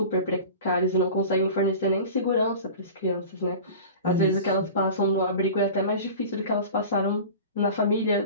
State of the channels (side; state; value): both; inverted; correlation -0.36